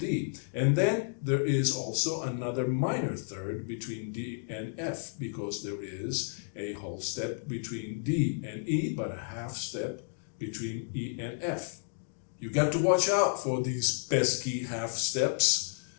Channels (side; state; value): right; silent; digital silence